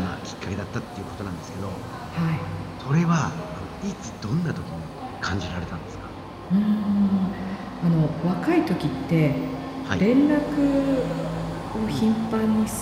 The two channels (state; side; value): identical; both; correlation 1.00